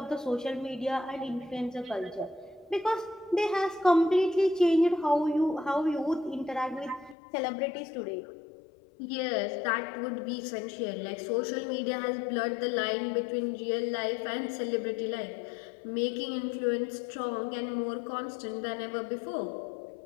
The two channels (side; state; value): right; drops out; at 7.2 s